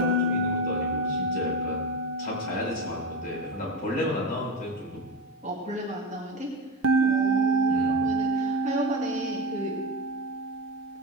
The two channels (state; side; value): normal; both; correlation 0.17